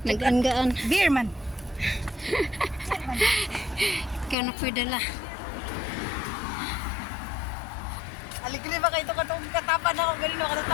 Nag-anggaan. Beer man. Kaya na pwedala. Aligli ba kayo katong katapan ako galing no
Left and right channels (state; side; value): drops out; right; at 4.4 s